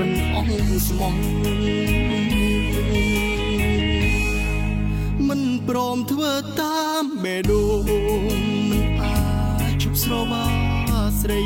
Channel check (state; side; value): identical; both; correlation 1.00